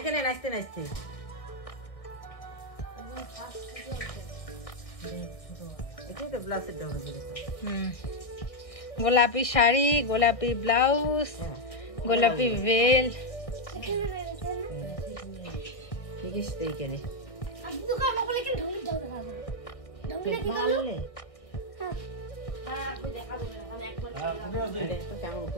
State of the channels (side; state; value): right; late; 1.8 ms